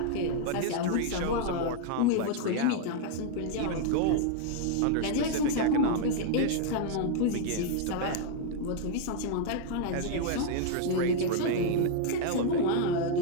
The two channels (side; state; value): both; different; correlation 0.00